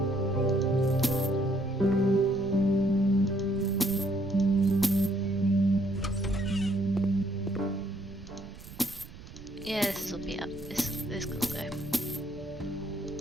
Yeah, this will be up. This can go.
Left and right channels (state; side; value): noise; right; rumble, 17 dB below the sound